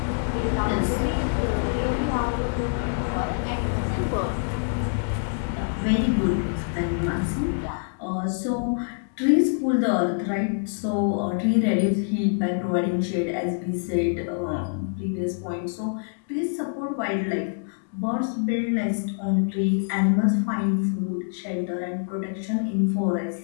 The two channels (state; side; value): silent; right; digital silence